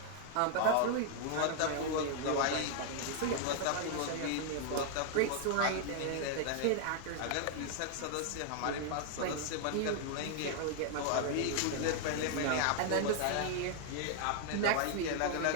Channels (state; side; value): different; both; correlation 0.00